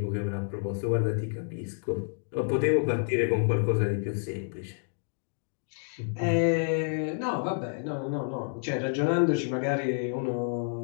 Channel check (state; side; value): silent; right; digital silence